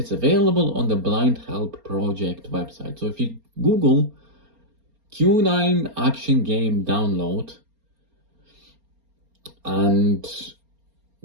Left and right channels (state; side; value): late; left; 4.3 ms